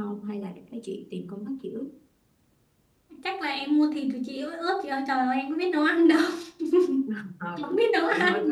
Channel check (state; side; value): identical; both; correlation 1.00